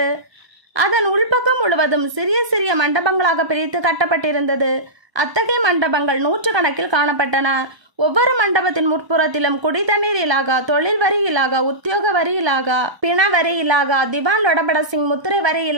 அதன் உள்பக்கம் முழுவதும் சிறிய சிறிய மண்டபங்களாக பிரித்து கட்டப்பட்டிருந்தது. அத்தகைய மண்டபங்கள் 100 கணக்கில் காணப்பட்டன. ஒவ்வொரு மண்டபத்தின் முற்புறத்திலும் குடி தண்ணீர் இலாகா, தொழில் வரி இலாகா, உத்தியோக வரி இலாகா, பிண வரி இலாகா, திவான் லோடபட சிங் முத்திரை வரி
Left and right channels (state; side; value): late; left; 1.0 ms